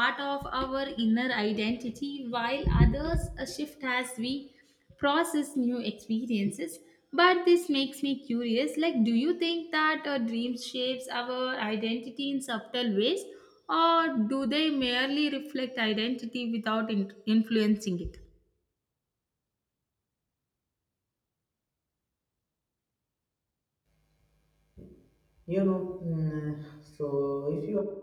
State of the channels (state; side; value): identical; both; correlation 1.00